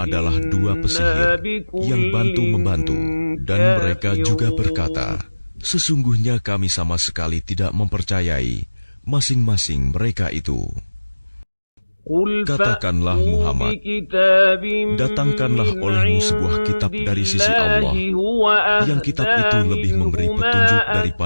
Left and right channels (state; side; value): inverted; both; correlation -1.00